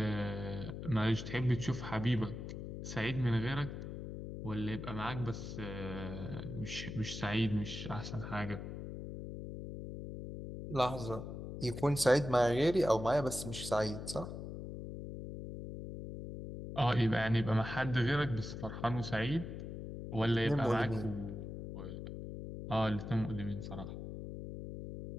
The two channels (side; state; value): left; noise; hum, 8 dB below the sound